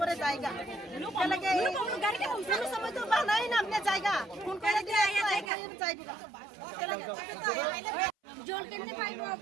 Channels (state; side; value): drops out; left; at 5.5 s